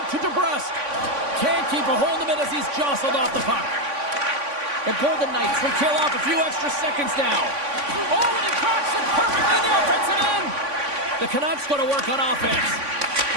to DeBrusque. Can't keep a hold of it as he's jostled off the puck. The Golden Knights will kill off a few extra seconds now. Oh, and he cracks it perfectly in the offensive end. The Canucks go to work on offense.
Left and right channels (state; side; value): late; left; 3.5 ms